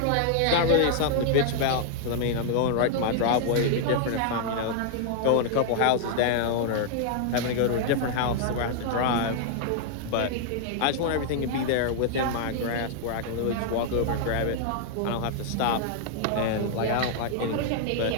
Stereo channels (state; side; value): different; both; correlation -0.01